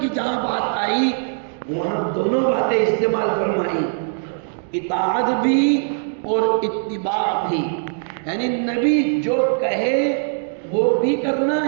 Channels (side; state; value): left; silent; digital silence